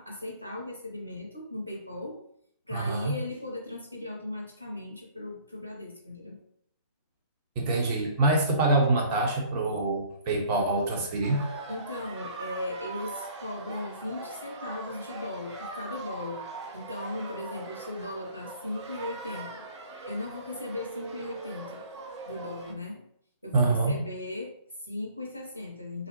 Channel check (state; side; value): inverted; both; correlation -0.54